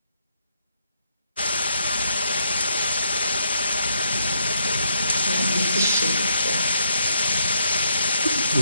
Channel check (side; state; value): both; inverted; correlation -0.74